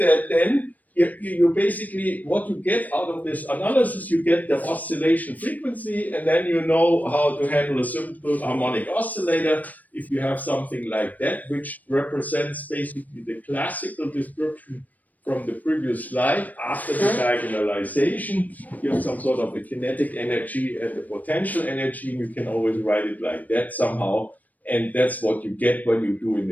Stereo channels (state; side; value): late; right; 0.079 ms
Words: then you basically, what you get out of this analysis, you get the oscillation frequency, and then you know how to handle a simple harmonic oscillator if you have something like that, which represents basically the classical description from the previous slide. After the diagonalization, you have some sort of a kinetic energy and the potential energy, and you can always write it like that somehow, and that's what you get when you do in